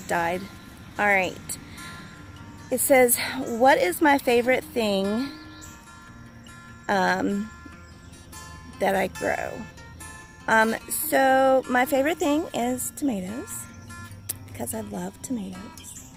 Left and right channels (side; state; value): both; identical; correlation 1.00